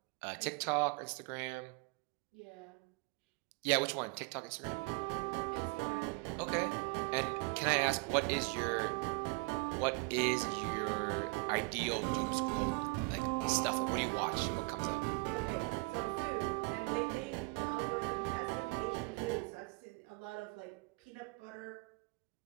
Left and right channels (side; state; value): left; quieter; 28.0 dB